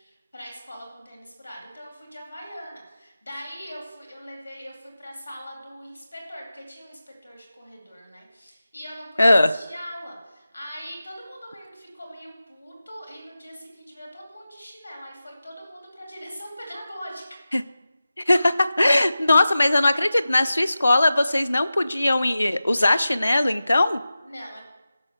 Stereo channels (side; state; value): both; inverted; correlation -0.94